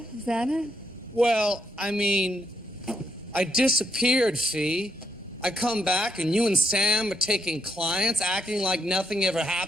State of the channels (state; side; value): normal; both; correlation 0.76